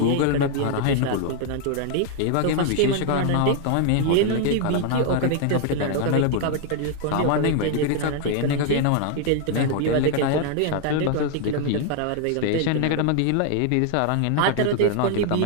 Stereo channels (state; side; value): different; both; correlation 0.00